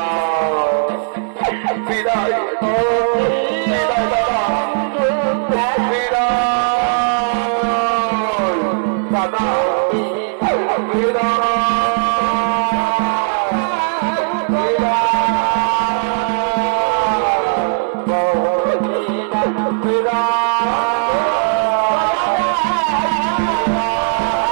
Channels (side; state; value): left; silent; digital silence